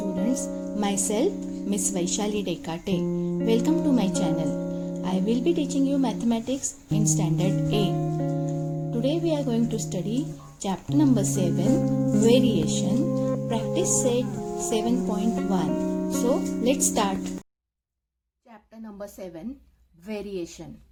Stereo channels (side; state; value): both; identical; correlation 1.00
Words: myself Miss Vaishali Dekate. Welcome to my channel. I will be teaching you mathematics in standard A. Today we are going to study chapter number 7, variation, practice set 7.1. So let's start. Chapter number 7, variation.